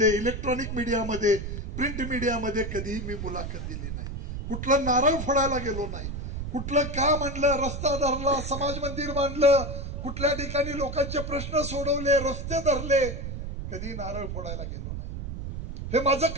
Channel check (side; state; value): right; noise; rumble, 6 dB below the sound